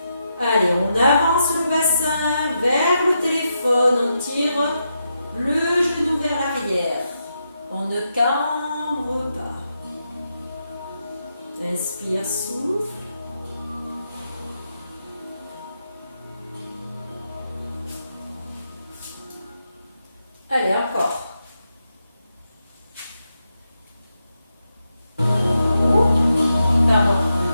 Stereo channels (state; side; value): inverted; both; correlation -0.85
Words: Allez, on avance le bassin vers le téléphone. On tire le genou vers l'arrière. On ne cambre pas. Inspire, souffle. Allez, encore.